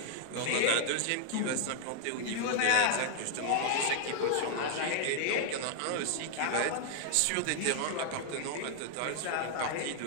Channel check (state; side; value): different; both; correlation 0.00